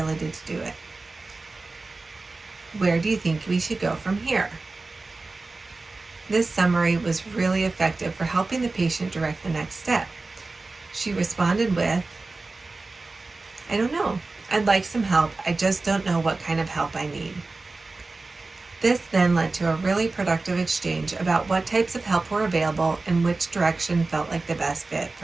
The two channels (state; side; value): quieter; left; 3.5 dB